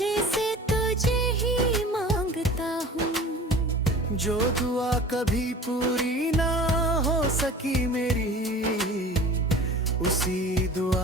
से तुझे ही मांगता हूँ। जो दुआ कभी पूरी ना हो सकी मेरी, उसी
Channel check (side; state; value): both; normal; correlation 0.41